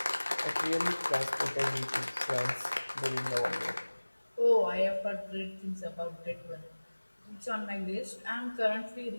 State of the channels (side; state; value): both; inverted; correlation -1.00